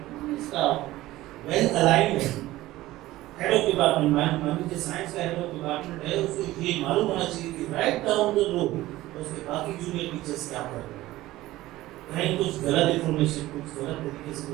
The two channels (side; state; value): left; quieter; 16.7 dB